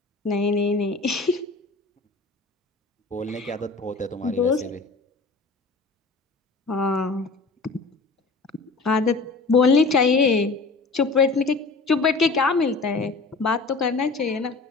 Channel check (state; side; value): quieter; right; 3.8 dB